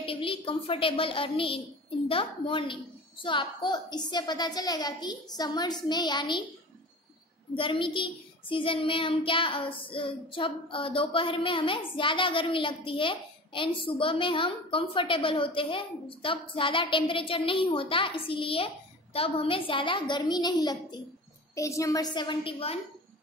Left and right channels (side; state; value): both; normal; correlation 0.37